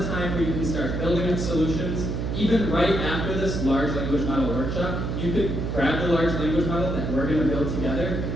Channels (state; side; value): noise; right; hum, 2 dB below the sound